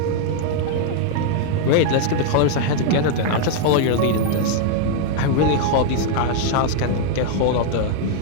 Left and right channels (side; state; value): both; different; correlation 0.00